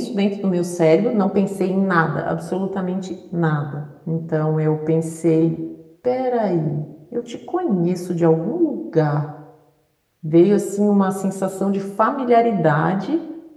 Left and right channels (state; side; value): identical; both; correlation 1.00